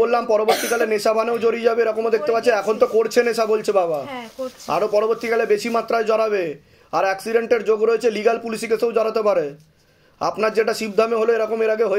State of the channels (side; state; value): both; identical; correlation 1.00